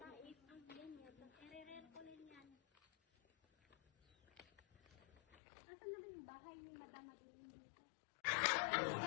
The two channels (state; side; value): drops out; right; at 5.4 s